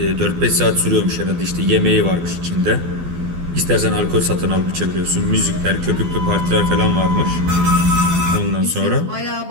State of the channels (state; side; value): late; left; 12 ms